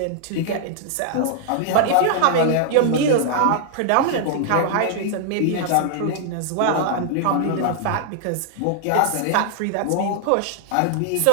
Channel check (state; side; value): different; both; correlation -0.01